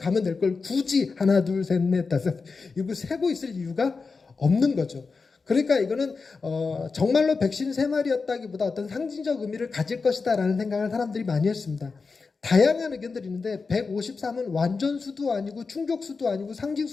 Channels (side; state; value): right; quieter; 4.5 dB